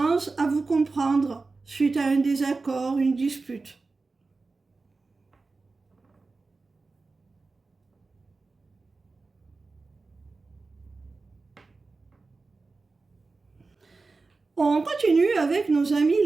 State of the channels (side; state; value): left; quieter; 3.9 dB